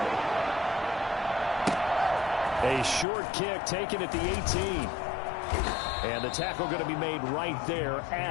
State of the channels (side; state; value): right; drops out; at 3.1 s